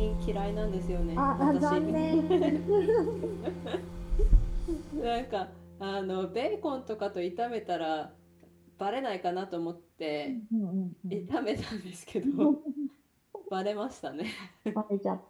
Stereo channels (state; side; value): identical; both; correlation 1.00